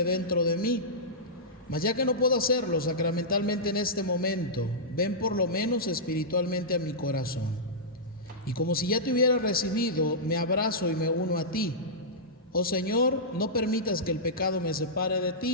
dentro de mí. Mas ya que no puedo hacerlo sacramentalmente en este momento, ven por lo menos espiritualmente a mi corazón. Y como si ya te hubiera recibido, me abrazo y me uno a ti. Oh Señor, no permitas que el pecado me separe de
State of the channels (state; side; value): normal; both; correlation -0.14